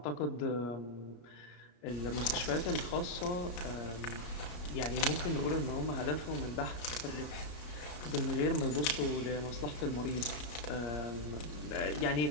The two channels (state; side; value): late; right; 33 ms